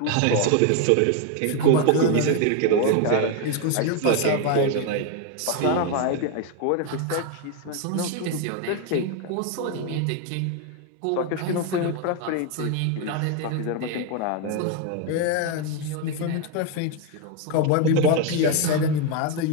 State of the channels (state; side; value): different; both; correlation 0.01